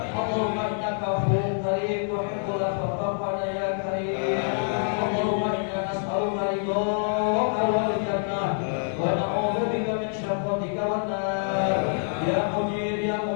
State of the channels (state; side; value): silent; right; digital silence